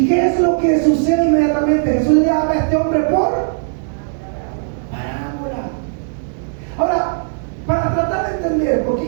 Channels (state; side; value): silent; left; digital silence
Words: qué es lo que sucede inmediatamente? Jesús le habla a este hombre por parábola. Ahora, para tratar de entender por qué